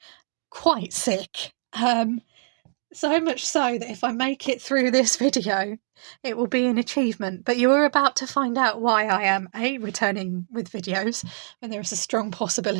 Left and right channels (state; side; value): silent; left; digital silence